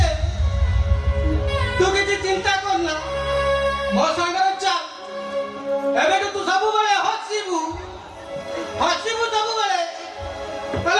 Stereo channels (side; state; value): both; identical; correlation 1.00